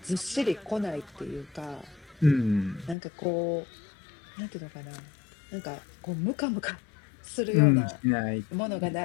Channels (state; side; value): drops out; right; at 3.0 s